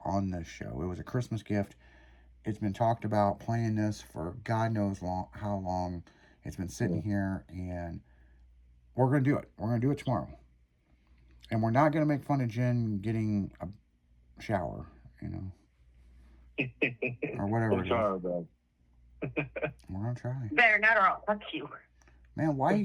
on this show. It was a Christmas gift. It's been talked about playing this for God knows how long. It's been sitting here, and we're going to do it. We're going to do it tomorrow. And we're not going to make fun of Jen getting a shower, or whatever it is. We're going to try. Better not, or I'll fuck you. Man, why you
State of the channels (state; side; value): identical; both; correlation 1.00